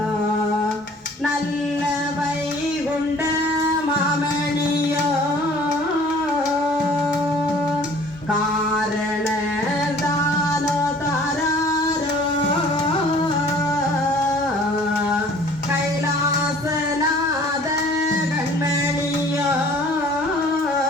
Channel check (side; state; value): both; normal; correlation 0.52